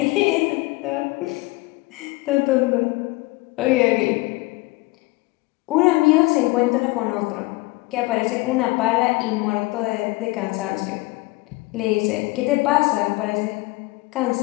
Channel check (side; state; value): right; quieter; 22.4 dB